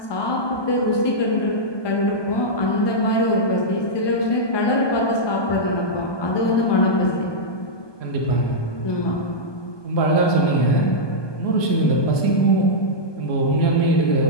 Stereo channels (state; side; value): late; right; 1.2 ms